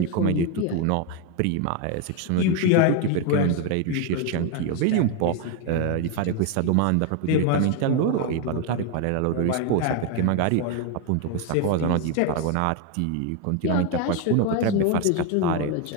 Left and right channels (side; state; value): both; different; correlation 0.02